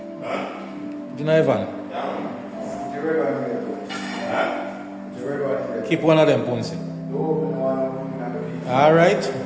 Huh? Do you know your van? Keep one of them, Ponce. Alright.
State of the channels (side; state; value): both; identical; correlation 1.00